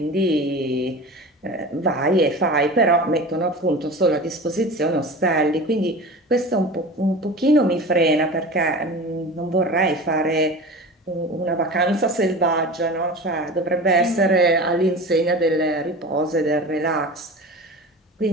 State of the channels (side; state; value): both; normal; correlation 0.34